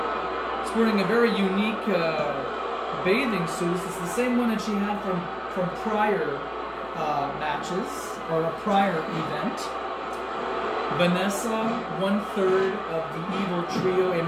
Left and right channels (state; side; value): identical; both; correlation 1.00